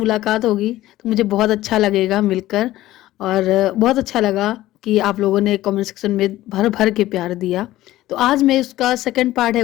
होगी तो मुझे बहुत अच्छा लगेगा मिलकर। और बहुत अच्छा लगा कि आप लोगों ने कमेंट सेक्शन में भर भर के प्यार दिया। तो आज मैं इसका सेकंड पार्ट है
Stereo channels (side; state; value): right; quieter; 15.6 dB